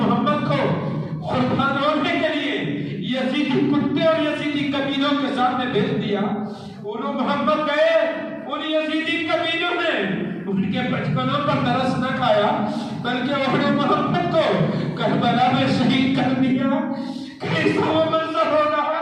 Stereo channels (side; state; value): both; identical; correlation 1.00